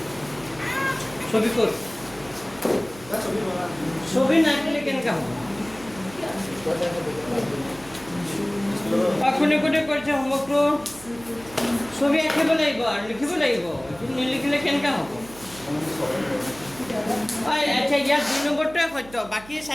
ছবি কর স্যার ছবি বলা ছবি না আঁকিলে কেনেকা হ'ব কোনে কোনে কৰিছে হোমৱৰ্কটো ছবি আঁকিব লাগিব আৰু লিখিব লাগিব নিলিখিলে কেনেকা হ'ব আচ্ছা ইয়াত 2 নম্বৰটোৱে সত্য বাকী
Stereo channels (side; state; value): right; noise; hum, 20 dB below the sound